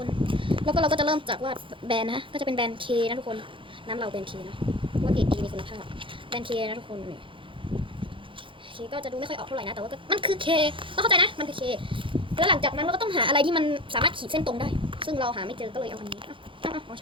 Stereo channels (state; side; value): late; left; 0.25 ms